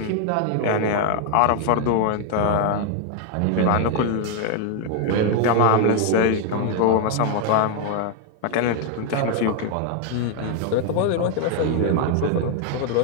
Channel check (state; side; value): different; both; correlation 0.00